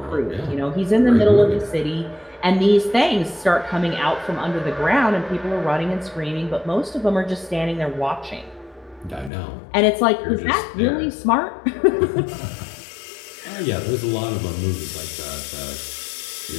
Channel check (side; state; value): right; drops out; at 9.3 s